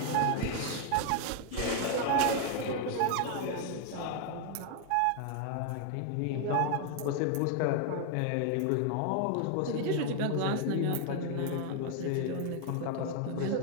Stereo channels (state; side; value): different; both; correlation 0.00